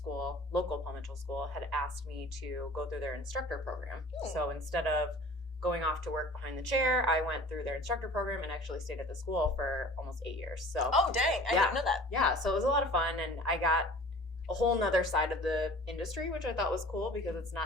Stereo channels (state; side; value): normal; both; correlation 0.45